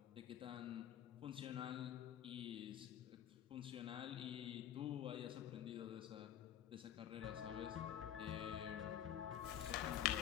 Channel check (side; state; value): right; quieter; 10.7 dB